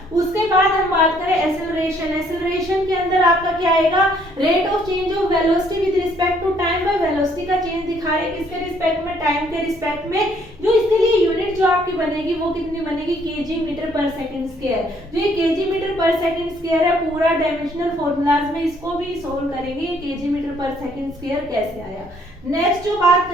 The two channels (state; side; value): normal; both; correlation 0.65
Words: उसके बाद हम बात करें एक्सेलरेशन। एक्सेलरेशन के अंदर आपका क्या आएगा, rate of change of velocity with respect to time. By velocity का चेंज दिखा रहे किसके रिस्पेक्ट में, टाइम के रिस्पेक्ट में। जो इसके लिए यूनिट जो आपकी बनेगी वो कितनी बनेगी, केजी मीटर पर सेकंड स्क्वायर। जो ये केजी मीटर पर सेकंड स्क्वायर है, पूरा डायमेंशनल फॉर्मूलाज में इसको भी सोल्व करेंगे, केजी मीटर पर सेकंड स्क्वायर कैसे आया। नेक्स्ट जो बात